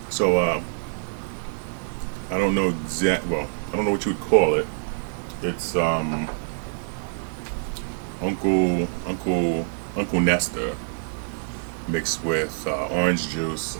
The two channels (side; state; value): left; silent; digital silence